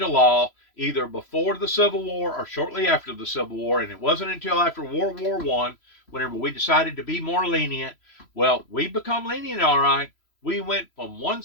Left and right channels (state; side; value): late; right; 3.0 ms